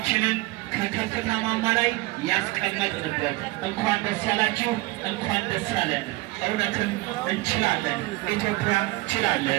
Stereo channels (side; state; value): left; quieter; 21.8 dB